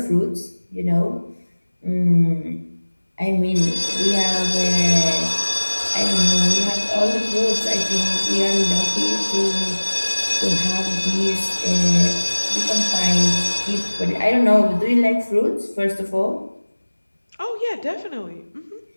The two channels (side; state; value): both; inverted; correlation -1.00